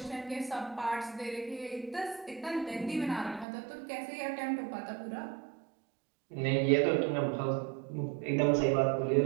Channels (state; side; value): drops out; left; at 3.5 s